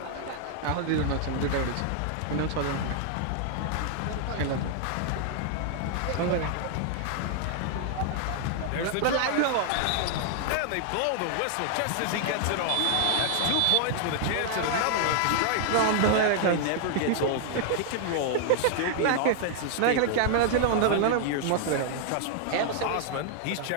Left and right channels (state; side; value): different; both; correlation 0.00